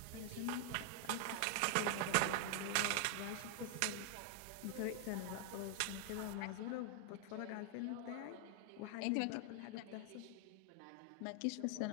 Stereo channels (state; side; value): different; both; correlation 0.00